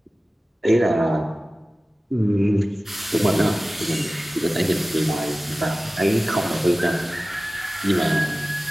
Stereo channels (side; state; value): both; normal; correlation 0.96